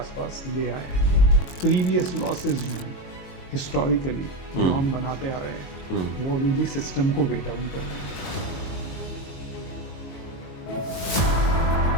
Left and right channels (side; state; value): right; late; 21 ms